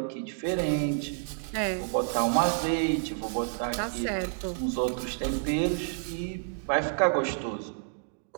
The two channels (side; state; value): left; silent; digital silence